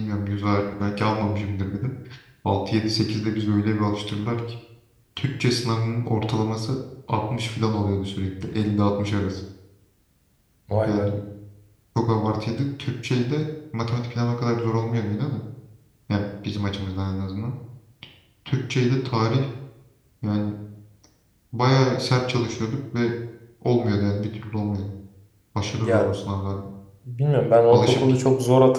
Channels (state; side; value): identical; both; correlation 1.00